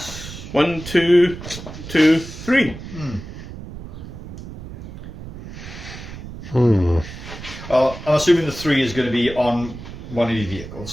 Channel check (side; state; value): right; noise; rumble, 12 dB below the sound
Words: 1, 2, 2, 3. Hmm. I'm assuming the 3 is going to be on one of the